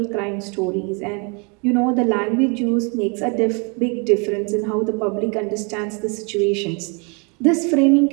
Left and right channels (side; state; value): left; quieter; 32.7 dB